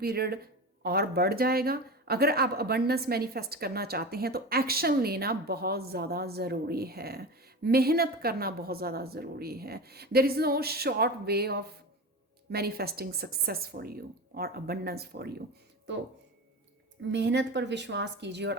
और बढ़ जाएगा। अगर आप अबंडेंस मैनिफेस्ट करना चाहते हैं तो एक्शन लेना बहुत ज़्यादा ज़रूरी है, मेहनत करना बहुत ज़्यादा ज़रूरी है। There is no short way of manifesting success for you और अबंडेंस फॉर यू। तो मेहनत पर विश्वास कीजिए और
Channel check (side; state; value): both; normal; correlation 0.27